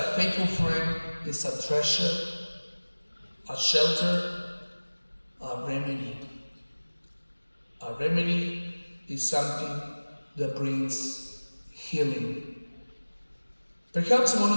faithful friend is a treasure, a shelter, a remedy. A remedy is something that brings healing. Perhaps one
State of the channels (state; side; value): inverted; both; correlation -1.00